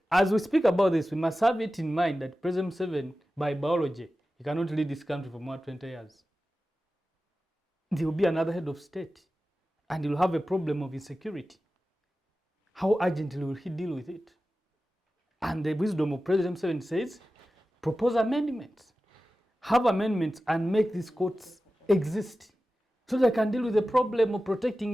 as we speak about this, we must have it in mind that President Museveni, by biology, he cannot lead this country for more than 20 years. There will be another head of state, and he will have a problem of insecurity. How urgently will he deal with it? And the wisdom of President Museveni says, propose amendments. Have amendments and make these courts exist so they can deal with the problem of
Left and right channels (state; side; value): normal; both; correlation 0.94